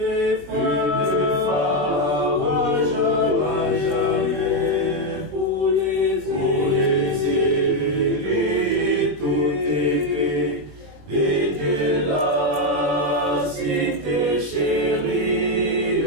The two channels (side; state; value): left; late; 21 ms